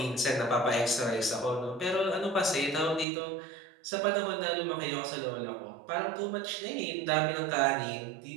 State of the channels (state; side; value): drops out; left; at 3.1 s